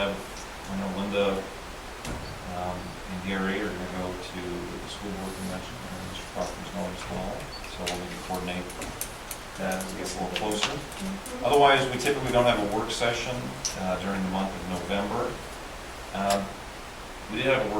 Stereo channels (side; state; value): both; identical; correlation 1.00